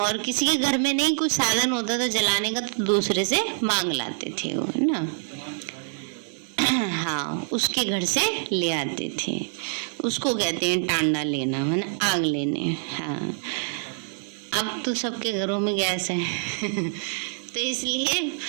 किसी के घर में नहीं कुछ साधन होता था जलाने का तो दूसरे से मांग लाते थे वो, है ना। हाँ, उसके घर से ले आते थे, उसको कहते हैं टांडा लेना, है ना, आग लेने। हाँ, अब तो सबके घरों में गैस है तो इसलिए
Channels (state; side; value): silent; left; digital silence